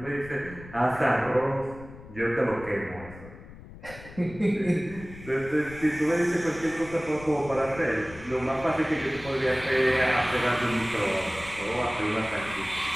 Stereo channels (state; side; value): noise; left; rumble, 16 dB below the sound